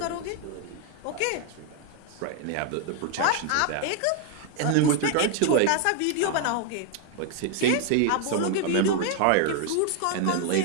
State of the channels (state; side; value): different; both; correlation 0.00